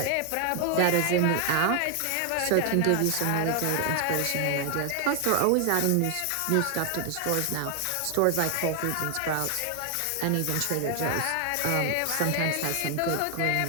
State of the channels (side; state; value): both; different; correlation 0.00